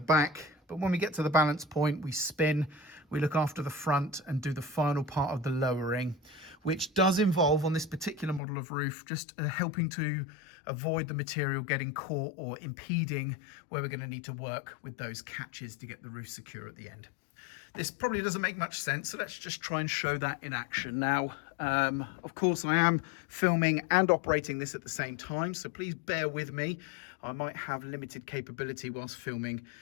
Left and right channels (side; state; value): right; drops out; at 8.4 s